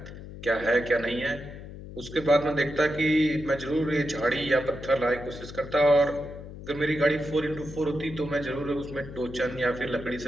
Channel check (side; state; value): left; noise; hum, 13 dB below the sound